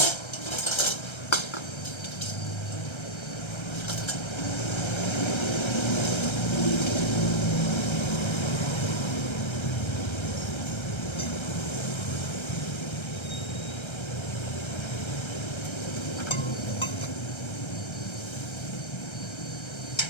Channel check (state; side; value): late; right; 1.3 ms